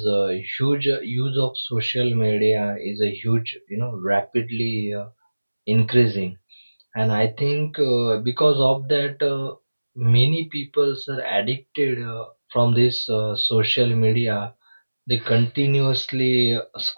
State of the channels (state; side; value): inverted; both; correlation -1.00